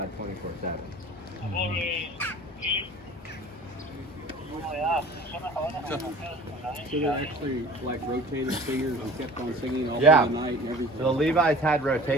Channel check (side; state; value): both; normal; correlation 0.44